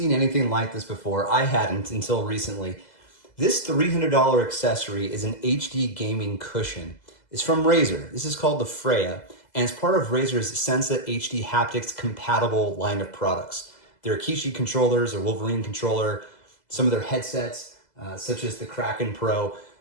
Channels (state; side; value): late; right; 2.0 ms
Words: anything like this before. I hadn't until recently. This $300 accessory is an HD gaming cushion. It's from Razer. This is called the Freya, and it's part of Razer's Sensa HD Haptics compatible line of products. Their Kishi controllers, or Wolverine controller, some of their headsets, such as the Kraken Pro.